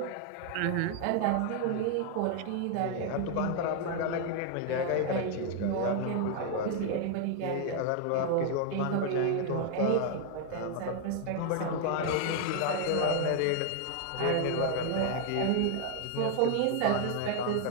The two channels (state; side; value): different; both; correlation 0.00